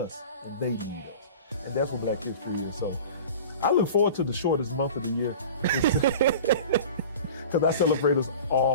and they need us, and that's what Black history is. So I look forward to the shortest month of the year because I celebrate us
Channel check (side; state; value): both; inverted; correlation -0.38